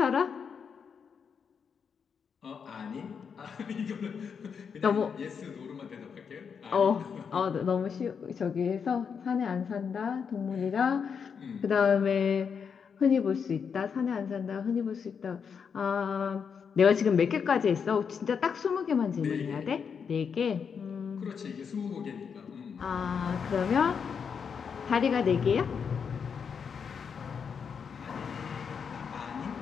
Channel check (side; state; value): right; quieter; 6.5 dB